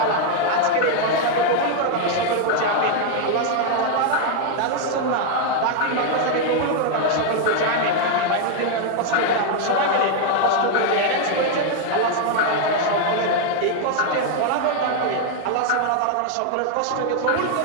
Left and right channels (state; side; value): different; both; correlation 0.00